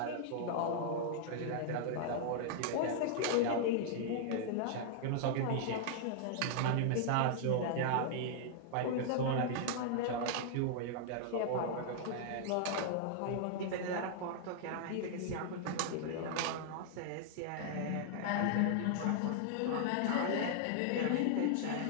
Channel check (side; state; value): both; different; correlation -0.01